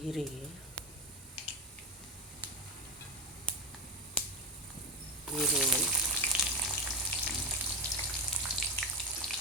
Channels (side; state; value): both; normal; correlation 0.14